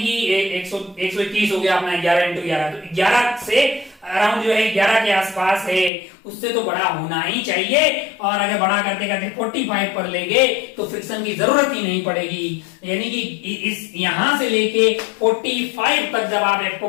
कि 121 हो गया अपना 11 इंटू 11, तो 11 से अराउंड जो है 11 के आसपास है, उससे तो बड़ा होना ही चाहिए। और अगर बड़ा करते करते 45 पर ले गए तो फ्रिक्शन की जरूरत ही नहीं पड़ेगी, यानी कि इस यहां से लेके 45 तक जब आप एफ को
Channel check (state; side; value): drops out; right; at 5.9 s